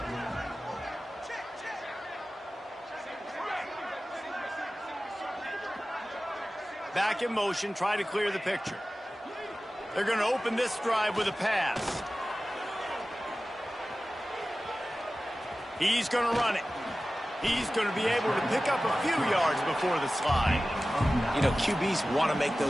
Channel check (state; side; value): normal; both; correlation 0.96